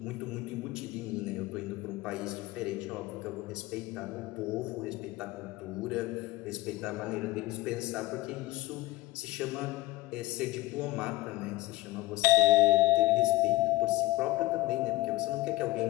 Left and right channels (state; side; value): quieter; right; 18.5 dB